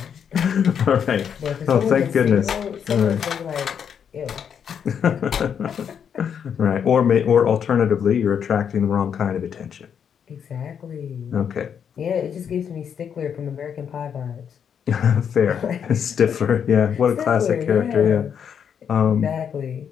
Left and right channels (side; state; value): right; quieter; 7.8 dB